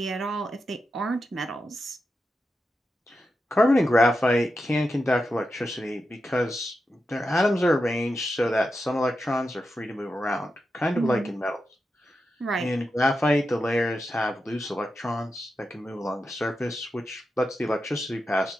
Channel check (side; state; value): both; normal; correlation 0.89